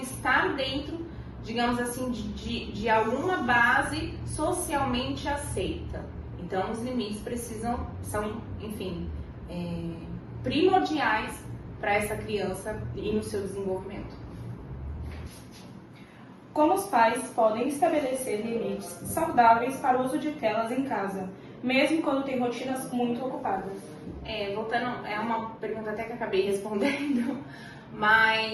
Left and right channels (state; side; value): identical; both; correlation 1.00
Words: dentro, digamos assim, de alguma base socialmente aceita. Então, os limites são, enfim, primordiais para essa criança e no seu desenvolvimento. Como os pais podem estabelecer limites saudáveis para o uso de telas em casa, mesmo quando tem rotinas muito ocupadas? Voltando, é uma pergunta até que eu acabei respondendo,